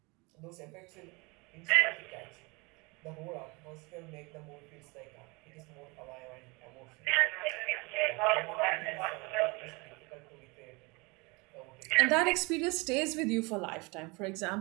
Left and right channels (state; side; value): quieter; left; 27.1 dB